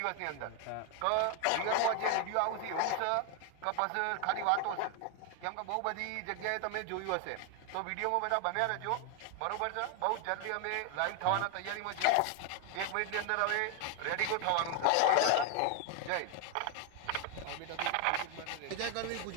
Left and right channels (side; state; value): both; different; correlation 0.00